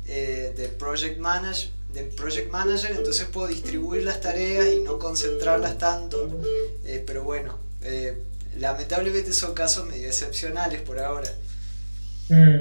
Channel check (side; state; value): both; inverted; correlation -1.00